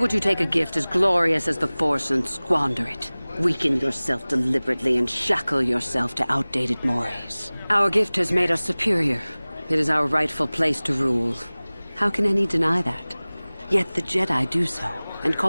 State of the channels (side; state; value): both; inverted; correlation -1.00